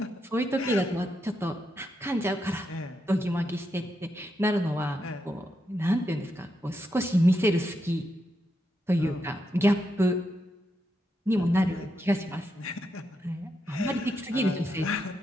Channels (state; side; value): normal; both; correlation 0.83